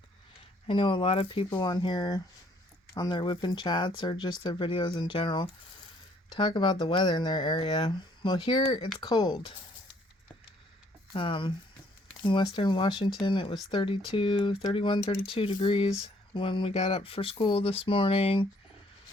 I know a lot of people on here, on their Wip N Chats or just their videos in general, talk about the weather in their area. Well, here it's cold. In Western Washington, it was 32 degrees when we got up for school this morning.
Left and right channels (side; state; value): both; normal; correlation 0.64